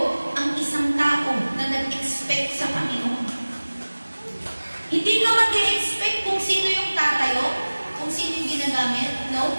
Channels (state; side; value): inverted; both; correlation -1.00